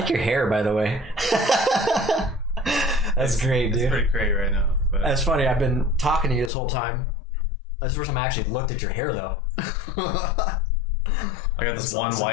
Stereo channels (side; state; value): right; drops out; at 6.5 s